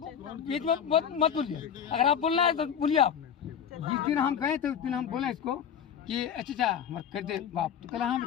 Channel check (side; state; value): right; quieter; 8.2 dB